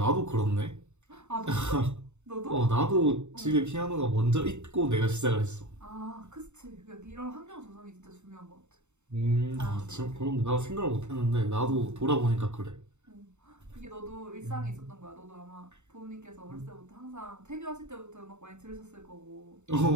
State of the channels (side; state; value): left; late; 0.83 ms